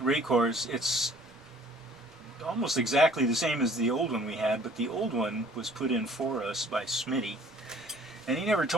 It's almost exactly the same as the old one we had, but the old one was put in for us by Smitty. And he never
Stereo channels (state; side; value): noise; right; rumble, 29 dB below the sound